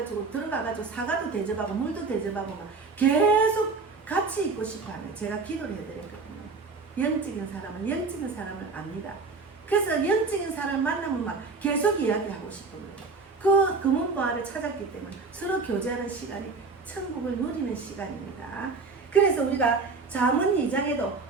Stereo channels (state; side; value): quieter; left; 4.3 dB